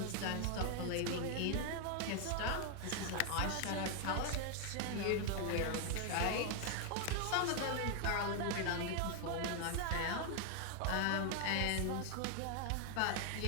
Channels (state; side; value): different; both; correlation 0.00